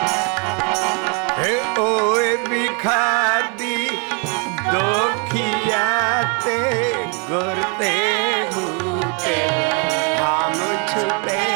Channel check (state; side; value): quieter; left; 34.0 dB